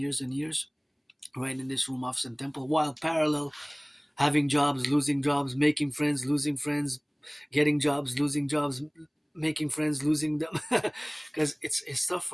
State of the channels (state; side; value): identical; both; correlation 1.00